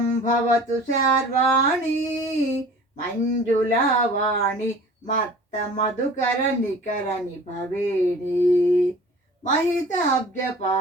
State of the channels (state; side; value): normal; both; correlation 0.44